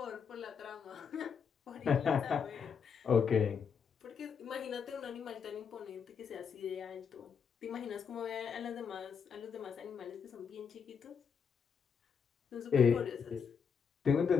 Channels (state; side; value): quieter; right; 6.5 dB